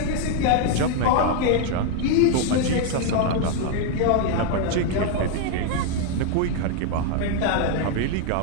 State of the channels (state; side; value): different; both; correlation 0.00